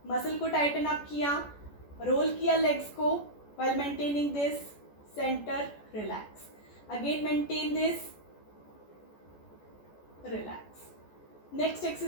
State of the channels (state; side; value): late; right; 14 ms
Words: मसल को टाइटन अप किया, रोल किया लेग्स को while maintaining this, center, relax. Again maintain this, relax. Next